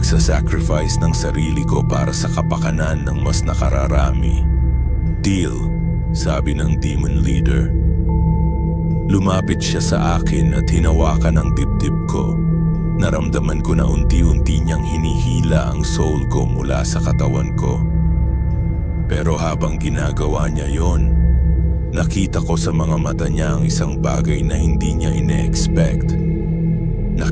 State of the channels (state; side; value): identical; both; correlation 1.00